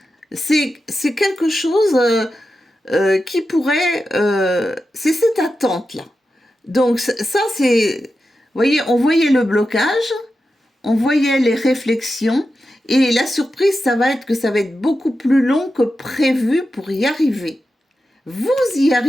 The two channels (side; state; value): both; normal; correlation 0.91